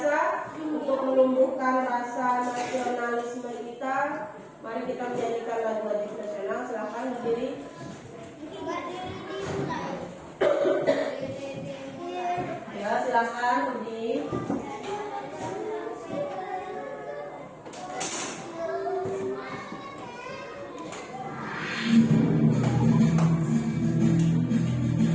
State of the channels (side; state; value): both; identical; correlation 1.00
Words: untuk menumbuhkan rasa nasionalisme kita, mari kita menyanyikan lagu wajib nasional. Silakan berdiri. Ya, silakan berdiri.